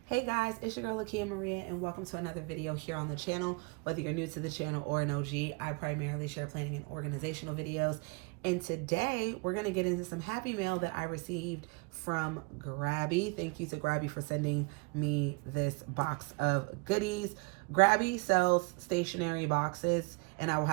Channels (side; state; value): left; quieter; 30.2 dB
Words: Hey guys, it's your girl Lakia Maria and welcome to another video here on the channel. Whether you're new to the channel or an OG, I primarily share planning and organizational videos. And today we're going to get into some happy mail that I received from Grabie. Thank you to Grabie for sending me this box of goodies. Grabie sells stationery boxes and I will